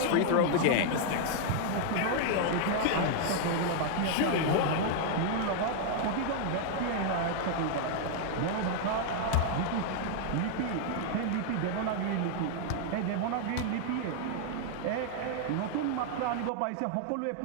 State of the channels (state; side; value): different; both; correlation 0.00